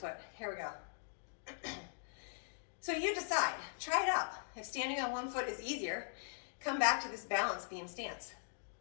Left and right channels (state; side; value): silent; right; digital silence